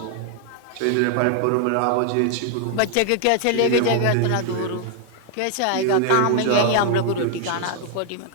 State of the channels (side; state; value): both; different; correlation 0.00